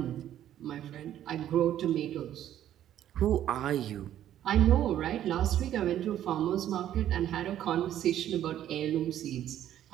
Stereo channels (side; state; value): left; quieter; 11.6 dB